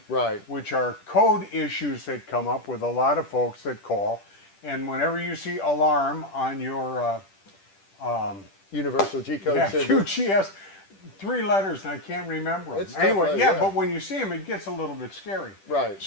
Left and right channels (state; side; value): late; right; 10 ms